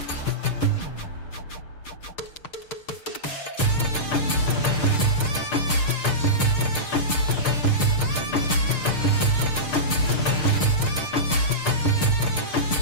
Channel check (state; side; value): late; right; 6.6 ms